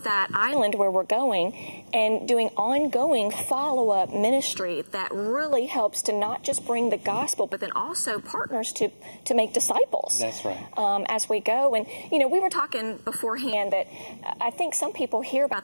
that island where we're going and doing ongoing follow-up ministry that really helps to not just bring the gospel, but then also partners to make disciples. That's right. As we go. And, you know, we were talking beforehand that I think some people hear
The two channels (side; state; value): both; inverted; correlation -1.00